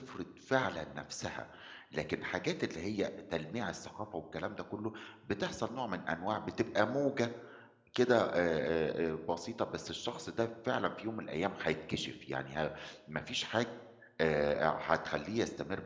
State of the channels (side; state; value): both; identical; correlation 1.00